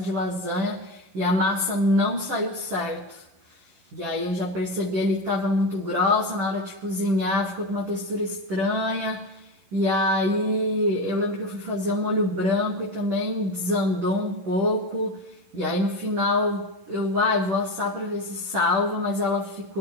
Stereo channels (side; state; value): left; late; 11 ms